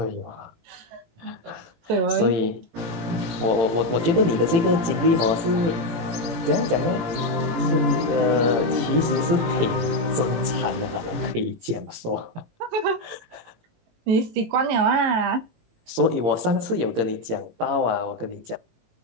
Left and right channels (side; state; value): left; late; 18 ms